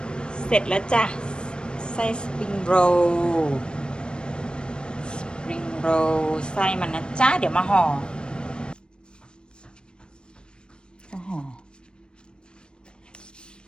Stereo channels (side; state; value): right; late; 0.052 ms